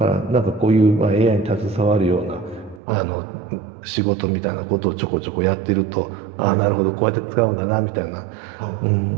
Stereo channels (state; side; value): drops out; left; at 2.8 s